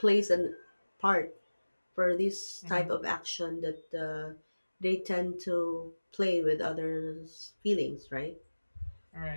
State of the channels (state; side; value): inverted; both; correlation -1.00